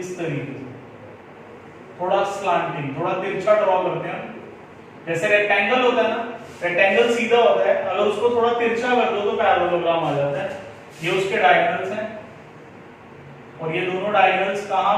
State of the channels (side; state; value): both; identical; correlation 1.00